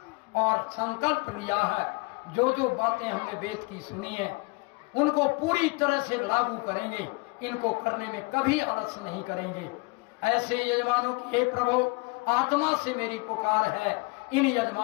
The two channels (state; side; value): quieter; right; 27.4 dB